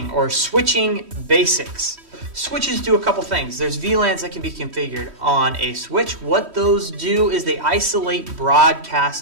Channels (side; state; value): left; late; 3.1 ms